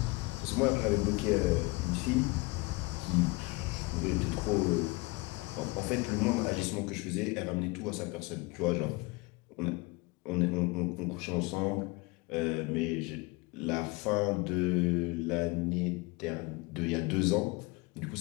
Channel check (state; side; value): quieter; right; 24.8 dB